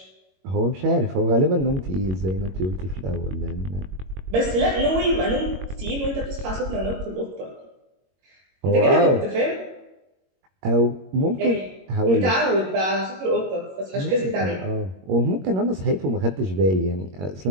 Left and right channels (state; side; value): late; left; 22 ms